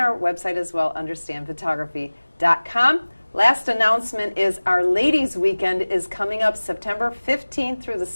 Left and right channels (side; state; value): both; inverted; correlation -1.00